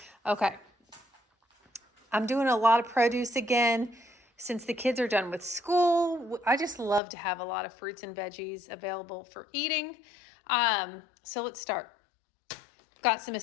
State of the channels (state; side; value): drops out; right; at 7.0 s